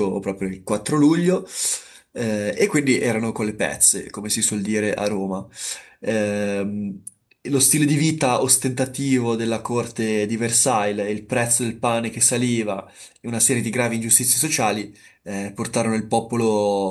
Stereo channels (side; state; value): both; identical; correlation 1.00